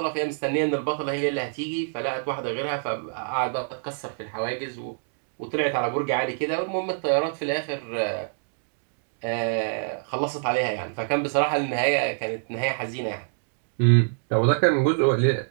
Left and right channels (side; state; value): left; silent; digital silence